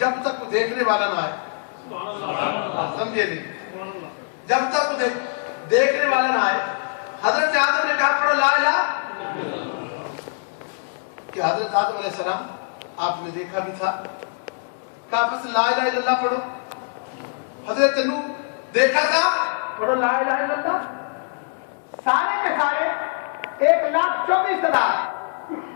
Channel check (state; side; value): silent; right; digital silence